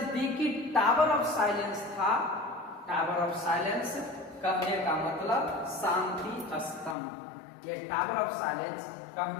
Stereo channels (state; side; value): drops out; right; at 7.0 s